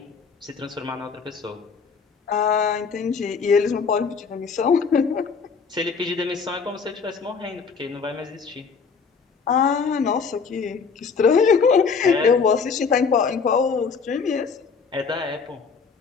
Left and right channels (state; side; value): quieter; right; 5.5 dB